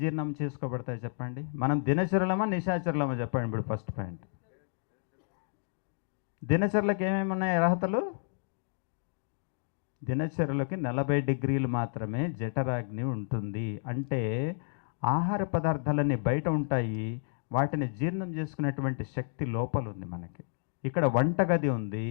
చేసుకోబడతాయి చెప్పండి? మనం దినచరులమా నిశాచరులమా చెప్పండి. ఇప్పుడు ఫస్ట్ పాయింట్, దినచరులకు ఏమేమి ఉన్నాయి అర్హతలు? దినచరులకి 40 డిగ్రీలు మాత్రమే జఠరాగ్ని ఉంటుంది. అంటే ఆహార పదార్థాలన్నీ బయట ఉంటాయి, వాటిని జీర్ణం చేసుకునేటువంటి శక్తి లోపల ఉంది మనకి. ఇక్కడ వంటగది ఉంది,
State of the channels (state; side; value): silent; right; digital silence